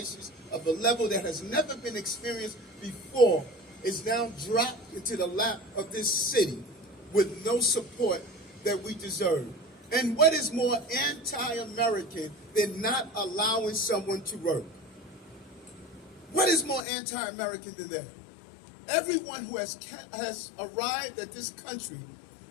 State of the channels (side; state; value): right; drops out; at 16.8 s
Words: of a level that has never been experienced before is now dropped into the lap of this city with no support that we deserve. And what is more anti-American than not allowing someone to work? What is more anti-American than that? Everyone who has arrived at this country